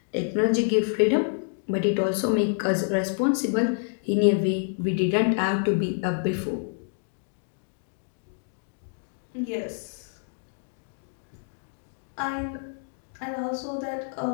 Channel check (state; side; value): silent; right; digital silence